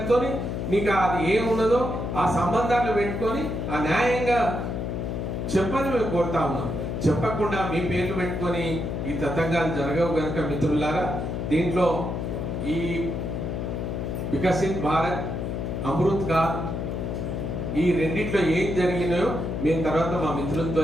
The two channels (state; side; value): noise; left; hum, 3 dB below the sound